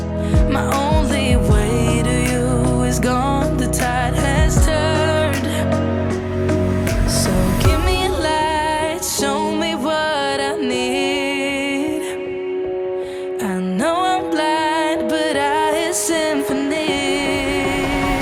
My only way to you is gone, the tide has turned. So give me a light, show me what I need. I know I'm blind, but I hear symphonies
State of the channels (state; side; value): identical; both; correlation 1.00